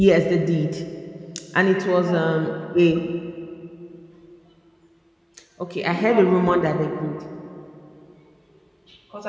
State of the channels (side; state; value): both; identical; correlation 1.00